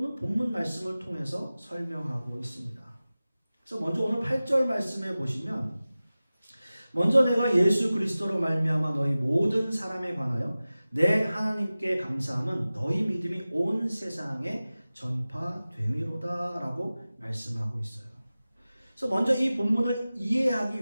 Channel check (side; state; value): both; inverted; correlation -0.97